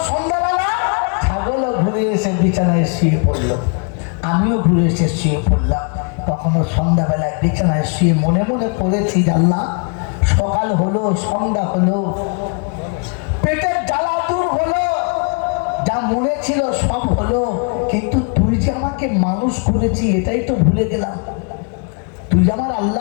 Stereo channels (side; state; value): right; quieter; 37.7 dB